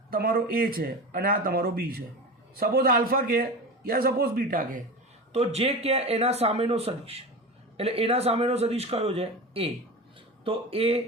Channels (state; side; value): normal; both; correlation 0.27